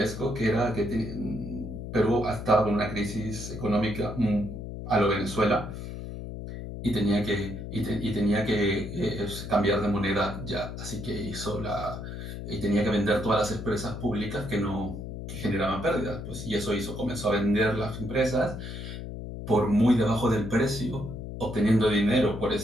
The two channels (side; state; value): left; noise; hum, 8 dB below the sound